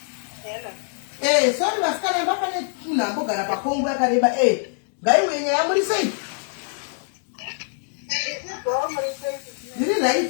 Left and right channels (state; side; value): silent; right; 63 dB below the other